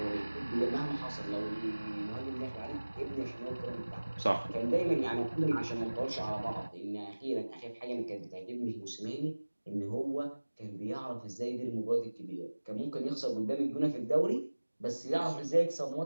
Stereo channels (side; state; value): both; inverted; correlation -1.00